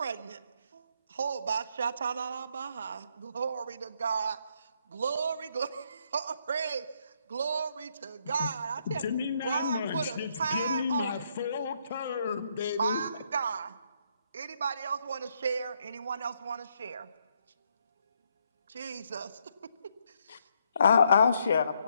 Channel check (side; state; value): both; inverted; correlation -0.74